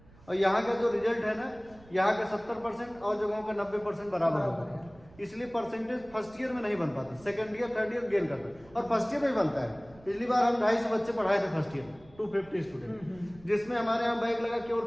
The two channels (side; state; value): right; noise; rumble, 24 dB below the sound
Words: और यहाँ का जो रिजल्ट है ना, यहाँ का 70% और जगहों का 90% बराबर होता है। इसलिए परसेंटेज फर्स्ट ईयर में नहीं बन पाता, second year third year gain करता है, और फर्स्ट ईयर में ही बनता है। पिछली बार हम 250 बच्चे पढ़ाए थे फर्स्ट ईयर, 250 स्टूडेंट, जिसमें हमारे यहाँ बैग लगा केवल